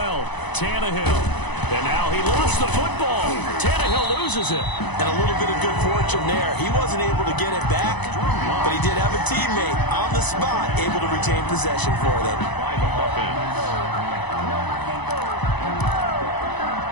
Tannehill. And now he lost the football. Tannehill loses it. And a little bit of good fortune there. He wasn't able to get it back, but he did have a teammate on the spot able to retain possession for them.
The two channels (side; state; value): right; late; 1.0 ms